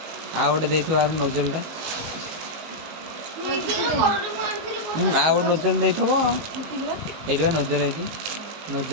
ଆଉ ଗୋଟେ ଦେଇଥିବ ଆର ନୋଜଲଟା। ଆଉ ଗୋଟେ ନୋଜଲ ଦେଇଥିବ। ଏଇଠି ବା ନୋଜଲ ହେଇଛି।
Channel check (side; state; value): left; late; 19 ms